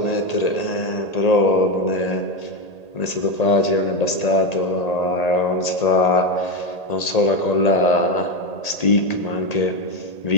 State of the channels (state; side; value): late; right; 1.8 ms